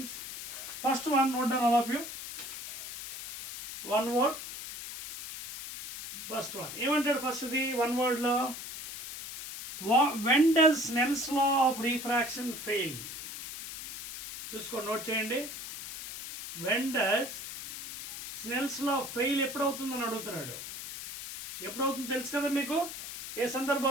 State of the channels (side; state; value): left; noise; hiss, 9 dB below the sound